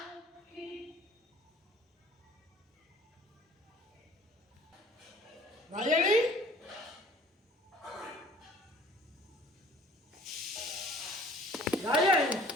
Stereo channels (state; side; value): normal; both; correlation 0.51